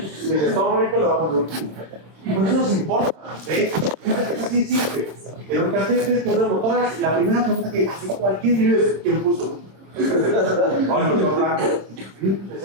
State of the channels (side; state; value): left; late; 26 ms